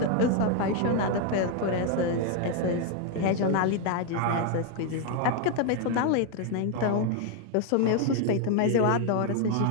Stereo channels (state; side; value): different; both; correlation 0.00